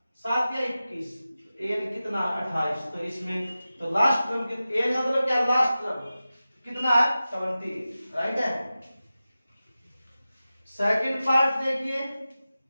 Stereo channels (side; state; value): both; inverted; correlation -0.94